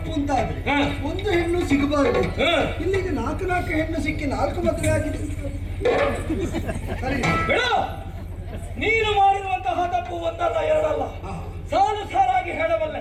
ಅಂತ ಆದ್ರೆ ಒಂದು ಹೆಣ್ಣು ಸಿಗಬಾರದು. ಇಲ್ಲಿಗೆ ನಾಲ್ಕು ಹೆಣ್ಣು ಸಿಕ್ಕಿ 4 ಮದುವೆ ಆಗಿದೆ. ನೀನು ಮಾಡಿರುವಂತಹ ತಪ್ಪು ಒಂದಲ್ಲ ಎರಡಲ್ಲ, ಸಾಲು ಸಾರಾಗಿ ಹೇಳಬಲ್ಲೆ.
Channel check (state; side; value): identical; both; correlation 1.00